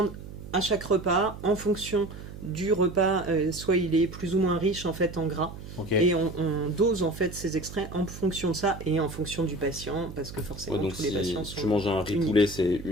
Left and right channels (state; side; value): noise; right; hum, 13 dB below the sound